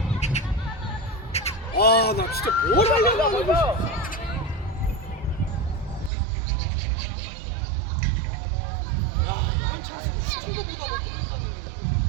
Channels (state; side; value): drops out; left; at 6.1 s